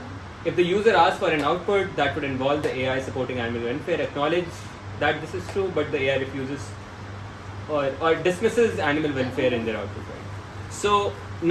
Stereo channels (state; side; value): identical; both; correlation 1.00